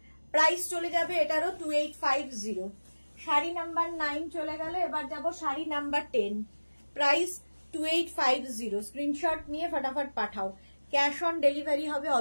প্রাইস চলে যাবে এটারও 2850। শাড়ি নাম্বার 9 চলে গেল, এবার যাব শাড়ি নাম্বার 10, প্রাইস 2850। স্ক্রিনশট নিয়ে ফটাফট পাঠাও, ক্যাশ অন ডেলিভারি হবে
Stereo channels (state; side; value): inverted; both; correlation -1.00